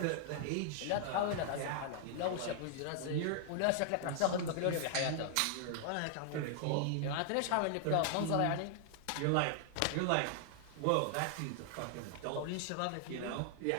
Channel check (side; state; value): both; different; correlation -0.01